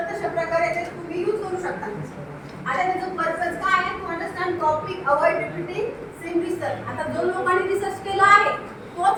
तशा प्रकारे ते तुम्ही यूज करू शकता. आता त्याचं पर्पज काय आहे? To understand topic, avoid repeating same research. आता जो लोकांनी रिसर्च केला आहे तोच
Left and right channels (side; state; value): both; identical; correlation 1.00